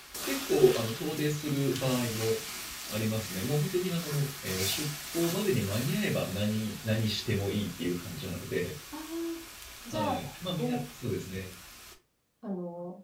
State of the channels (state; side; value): identical; both; correlation 1.00